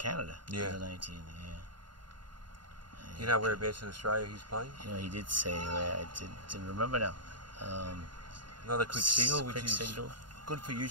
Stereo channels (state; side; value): late; left; 0.71 ms